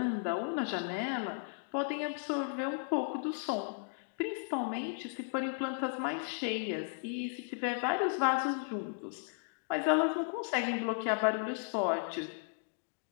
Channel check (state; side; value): silent; right; digital silence